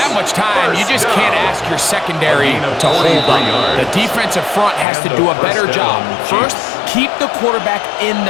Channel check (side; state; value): right; drops out; at 4.9 s